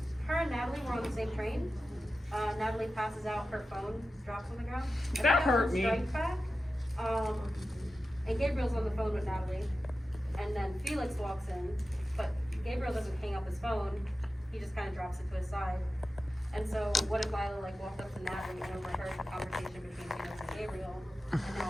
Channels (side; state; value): both; normal; correlation 0.93